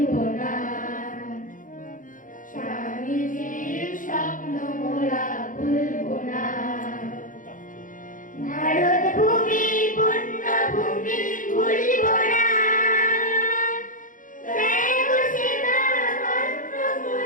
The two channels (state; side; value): late; right; 0.38 ms